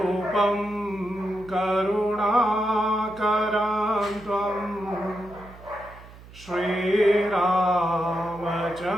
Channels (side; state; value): right; noise; hum, 19 dB below the sound